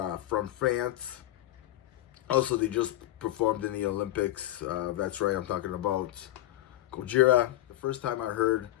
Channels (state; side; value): quieter; right; 14.9 dB